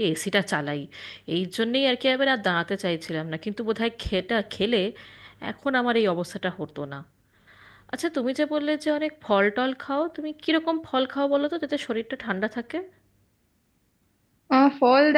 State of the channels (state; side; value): identical; both; correlation 1.00